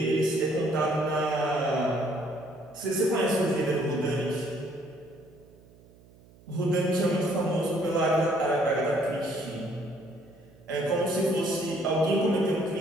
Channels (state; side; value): noise; right; hum, 25 dB below the sound